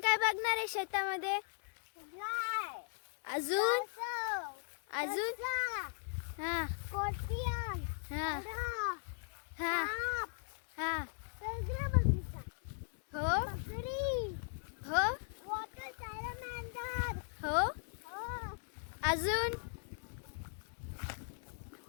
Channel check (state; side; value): silent; right; digital silence